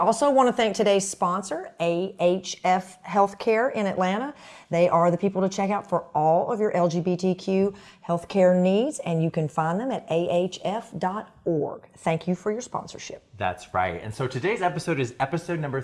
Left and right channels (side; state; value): both; identical; correlation 1.00